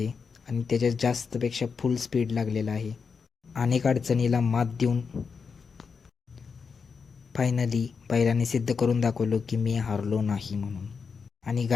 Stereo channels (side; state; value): right; quieter; 5.5 dB